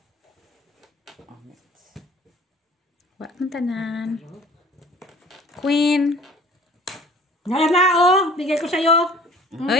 Amit. Wala mong tanan. Queen. Ngayon na, oh! Bigay ko sa'yo.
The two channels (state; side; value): normal; both; correlation 0.49